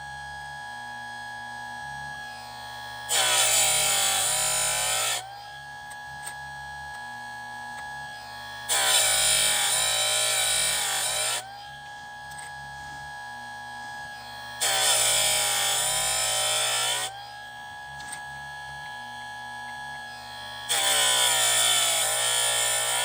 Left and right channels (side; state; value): both; identical; correlation 1.00